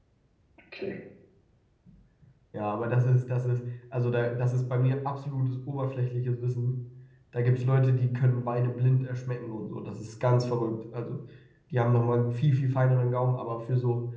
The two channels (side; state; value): both; identical; correlation 1.00